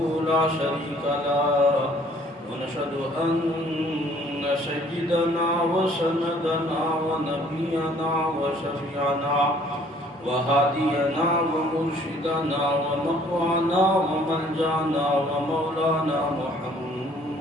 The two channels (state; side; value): normal; both; correlation 0.58